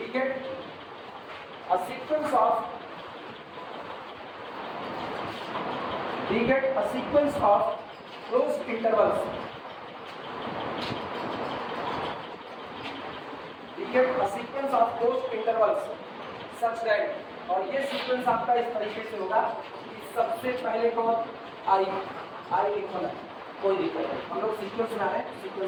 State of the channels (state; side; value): identical; both; correlation 1.00